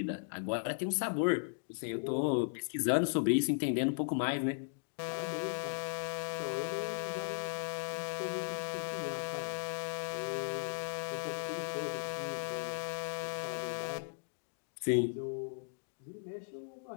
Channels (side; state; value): right; silent; digital silence